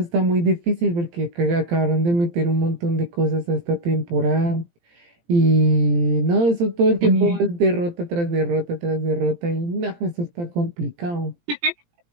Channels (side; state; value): left; late; 17 ms